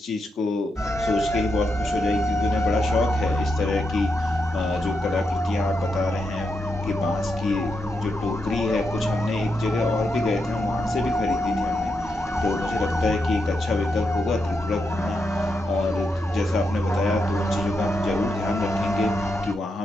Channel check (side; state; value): both; normal; correlation 0.84